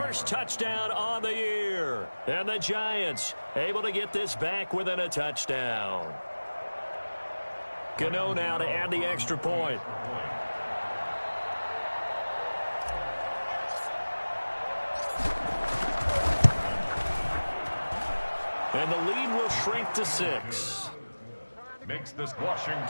touchdown on the year. And the Giants able to get this back within a touchdown. Gano now to add the extra point. And the lead will shrink to 6. Makes this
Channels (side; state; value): both; inverted; correlation -1.00